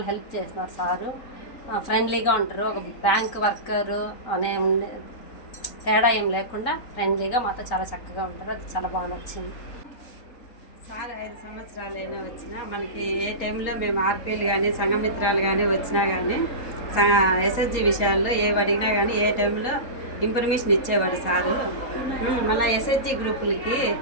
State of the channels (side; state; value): right; late; 3.8 ms